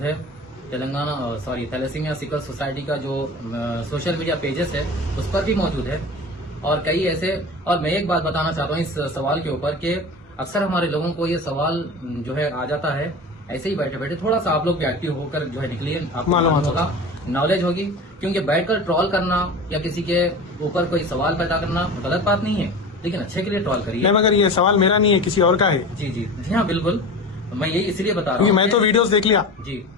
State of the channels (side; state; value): both; normal; correlation 0.33